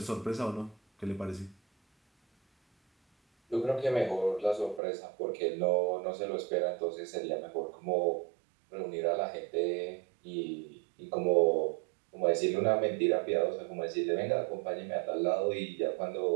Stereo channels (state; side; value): drops out; left; at 4.8 s